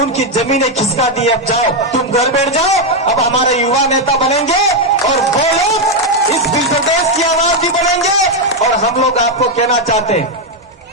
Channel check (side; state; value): both; normal; correlation 0.03